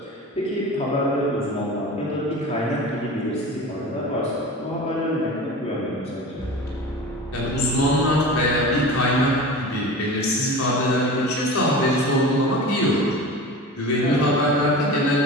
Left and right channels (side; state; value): both; normal; correlation 0.34